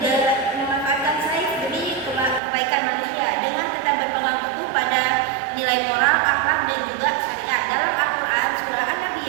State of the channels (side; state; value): left; drops out; at 2.4 s